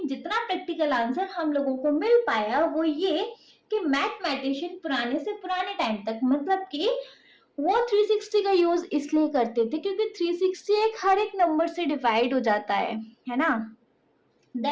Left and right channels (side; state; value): both; identical; correlation 1.00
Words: जितना practical answer हम लोगों को मिल पाया वो ये कि मैथमेटिशियन पुराने से पुराने टाइम तक, मतलब कि वो 360 का यूज इसलिए करते थे क्योंकि 360 एक हर एक नंबर से डिवाइड हो जाता है ना.